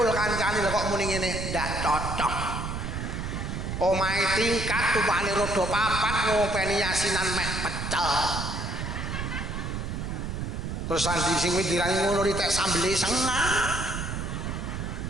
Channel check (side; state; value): right; noise; rumble, 4 dB below the sound